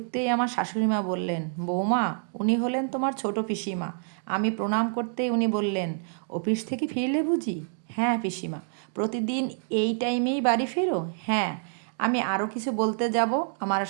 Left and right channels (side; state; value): left; silent; digital silence